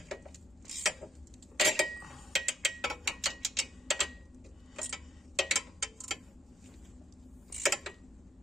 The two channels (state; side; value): normal; both; correlation 0.75